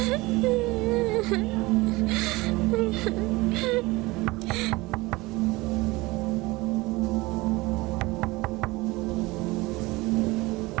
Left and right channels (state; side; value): quieter; left; 21.8 dB